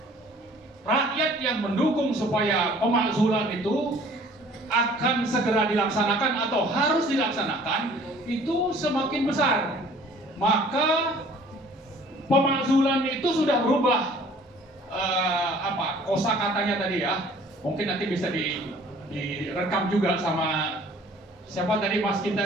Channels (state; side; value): normal; both; correlation 0.53